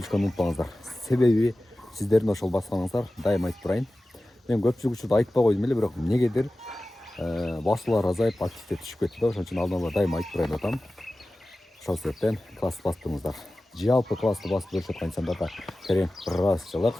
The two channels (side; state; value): both; normal; correlation 0.96